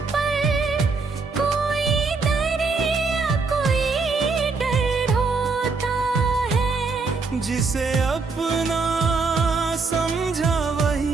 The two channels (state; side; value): quieter; left; 4.3 dB